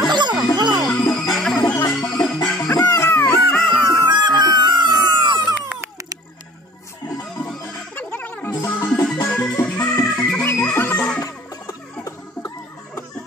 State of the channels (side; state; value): both; normal; correlation 0.48